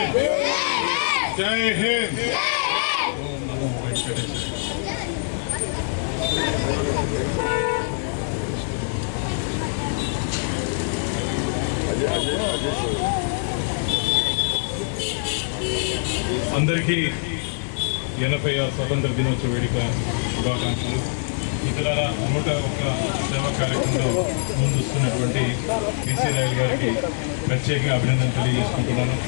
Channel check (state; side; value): silent; right; digital silence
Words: జై హింద్. అందరికీ 80వ స్వతంత్ర దినోత్సవ వేడుక శుభాకాంక్షలు. ఇతర 101 సేవా కార్యక్రమంలో ముందుస్తున్నటువంటి పీసీ రాయల్ గారికి ప్రత్యేకంగా అభినందనలు తెలియజేసుకుంటున్నాను.